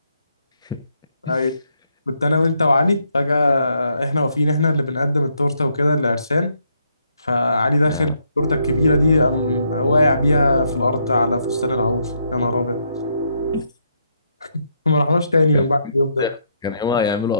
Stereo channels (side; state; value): both; inverted; correlation -0.75